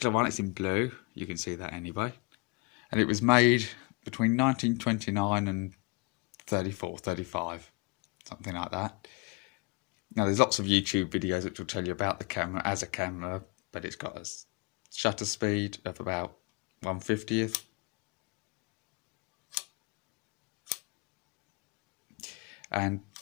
one, it's in blue. You can see that anyway. And it was made between 1929 and 34, 35, something like that. Now there's lots of YouTube videos which will tell you about the camera as a camera, but it's got a shutter speed of about 1/50th. And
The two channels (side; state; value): right; quieter; 28.7 dB